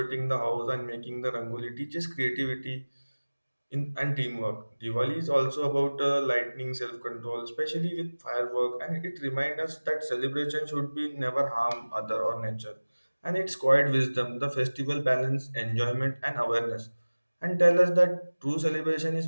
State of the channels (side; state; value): both; inverted; correlation -1.00